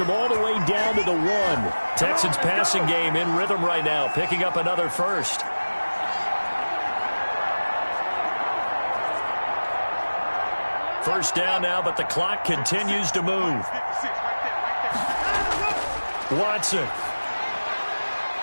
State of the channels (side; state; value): both; inverted; correlation -1.00